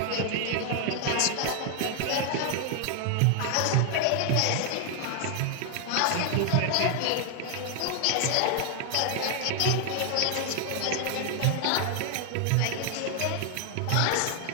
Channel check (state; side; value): different; both; correlation 0.00